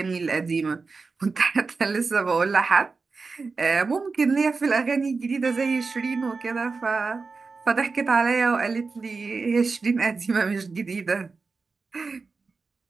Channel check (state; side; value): quieter; left; 4.4 dB